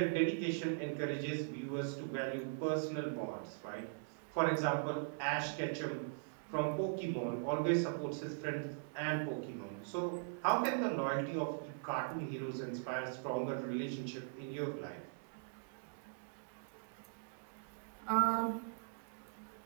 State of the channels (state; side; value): silent; left; digital silence